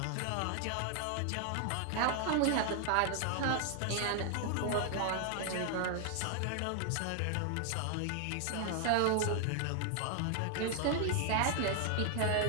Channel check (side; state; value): both; different; correlation 0.00